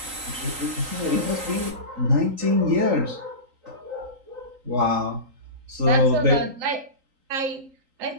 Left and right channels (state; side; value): late; left; 3.8 ms